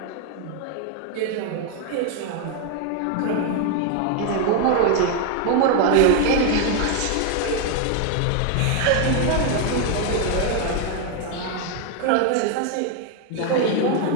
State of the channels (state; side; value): different; both; correlation 0.01